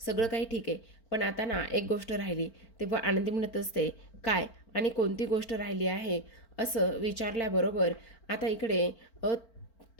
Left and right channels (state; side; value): late; right; 4.4 ms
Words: सगळं काही ठीक आहे, पण आता ना एक गोष्ट राहिली. तेव्हा आनंदी म्हणत असते, काय आणि कोणती गोष्ट राहिली आहे? असं विचारल्याबरोबर आता इकडे